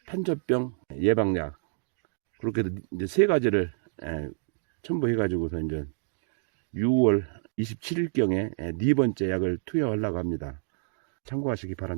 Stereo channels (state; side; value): silent; left; digital silence